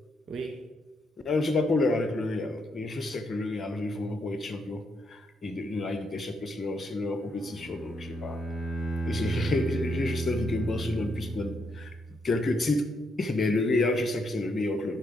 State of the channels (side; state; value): both; normal; correlation 0.78